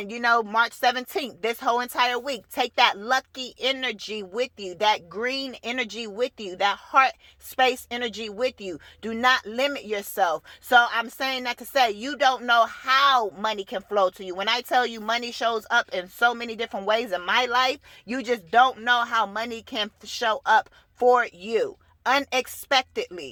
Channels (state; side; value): identical; both; correlation 1.00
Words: March 17th, this whole entire week, take that lucky energy with you, that green energy with you, that heart space energy with you. Do not limit yourself. So I'm saying that to say, you don't know how money can flow to you. When I tell you money shows up in so many different ways in my life, you just don't know how money can show up for you